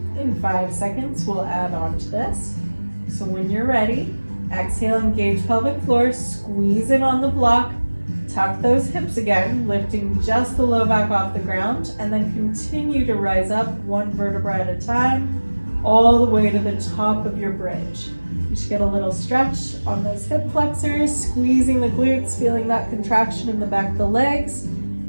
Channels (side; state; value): both; inverted; correlation -1.00